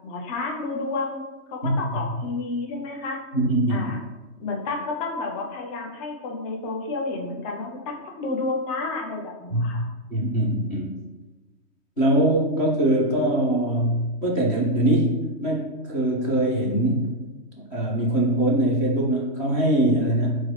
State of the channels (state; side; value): late; right; 3.1 ms